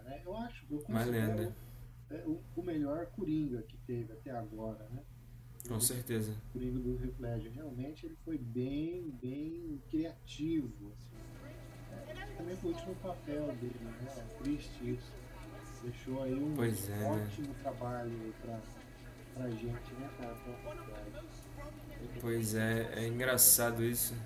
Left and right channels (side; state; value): both; identical; correlation 1.00